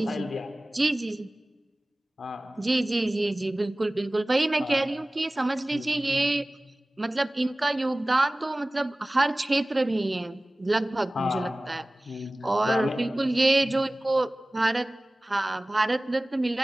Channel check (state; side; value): normal; both; correlation 0.98